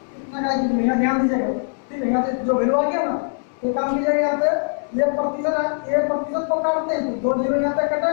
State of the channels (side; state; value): right; silent; digital silence